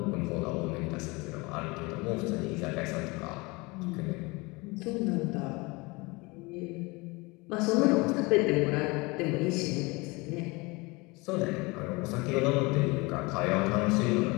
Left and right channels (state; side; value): quieter; right; 25.2 dB